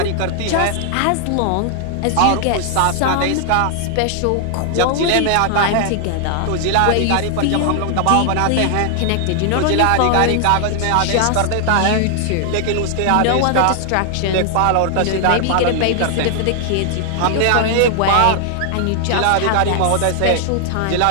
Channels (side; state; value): both; different; correlation 0.00